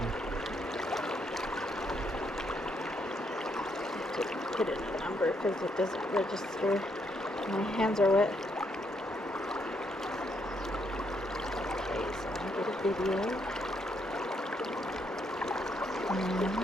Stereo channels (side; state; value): both; normal; correlation 0.75